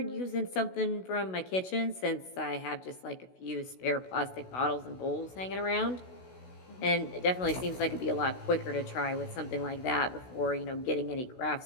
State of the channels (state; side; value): late; right; 16 ms